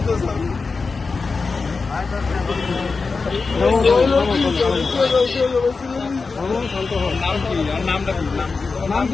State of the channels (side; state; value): right; quieter; 4.4 dB